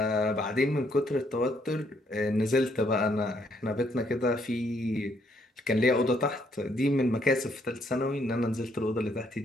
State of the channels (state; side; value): normal; both; correlation 0.70